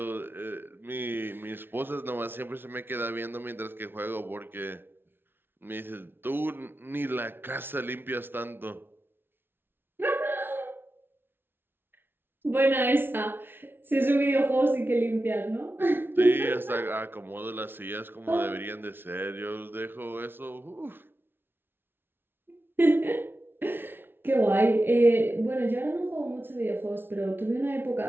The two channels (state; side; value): late; left; 0.11 ms